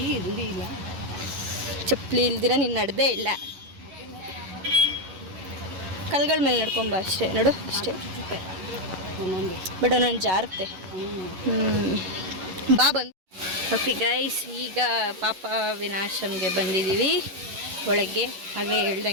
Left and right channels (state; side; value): late; left; 11 ms